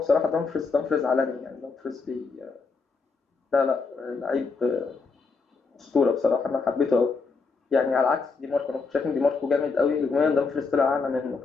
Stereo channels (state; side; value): quieter; right; 4.6 dB